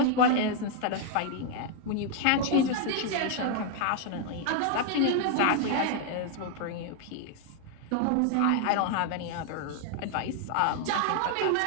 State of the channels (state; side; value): different; both; correlation 0.00